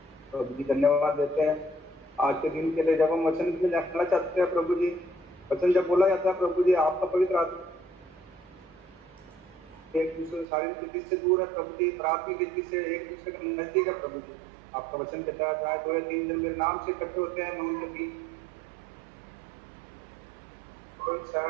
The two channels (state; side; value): drops out; left; at 10.5 s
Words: प्रभु जी धन्यवाद देते हैं आज के दिन के लिए। जब हम वचन में जाना चाहते हैं प्रभु जी, वचन जब बोला जाता है प्रभु जी, आपका पवित्र आत्मा एक दूसरे शारीरिक रीति से दूर है प्रभु जी, प्राथमिक रीति से एक दूसरे का नजदीक है प्रभु जी। आपका वचन कहता है जहाँ 2 या 3 जन मेरे नाम से इकट्ठे होते हैं, मैं उनके बीच